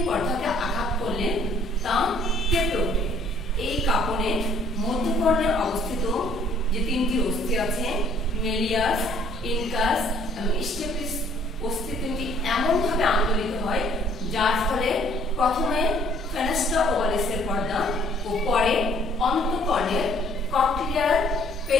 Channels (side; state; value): both; normal; correlation 0.60